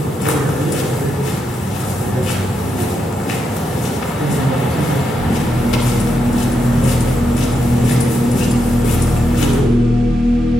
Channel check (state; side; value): normal; both; correlation 0.83